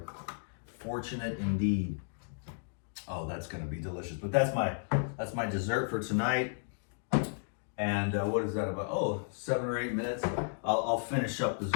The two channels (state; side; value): silent; right; digital silence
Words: fortunate indeed. Oh, that's gonna be delicious. But that's my dessert for tonight. And what is that about? Oh, 7 or 8 minutes. I'll finish up this